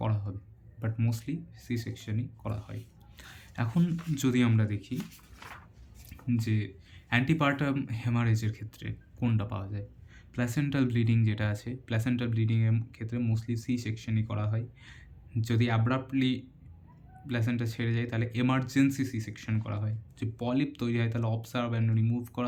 হবে, বাট মোস্টলি সি সেকশনই করা হয়। এখন যদি আমরা দেখি যে অ্যান্টিপার্টাম হেমারেজের ক্ষেত্রে কোনটা পাওয়া যায়, প্ল্যাসেন্টাল ব্লিডিং যেটা আছে, প্ল্যাসেন্টাল ব্লিডিংয়ের ক্ষেত্রে মোস্টলি সি সেকশনই করা হয়। যদি অ্যাব্রাপ্টলি প্ল্যাসেন্টা ছেড়ে যায় তাহলে এমার্জেন্সি সি সেকশন করা হয়। যে পলিপ তৈরি হয় তাহলে অবজার্ভ অ্যান্ড রিমুভ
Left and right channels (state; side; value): identical; both; correlation 1.00